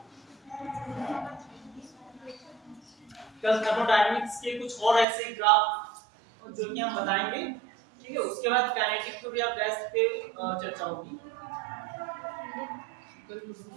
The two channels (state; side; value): drops out; left; at 5.1 s